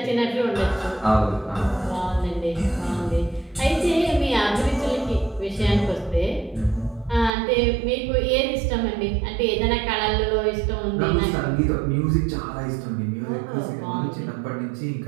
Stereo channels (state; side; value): drops out; left; at 7.3 s